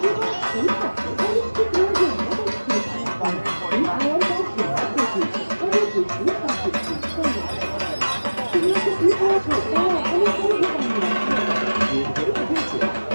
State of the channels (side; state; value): both; inverted; correlation -1.00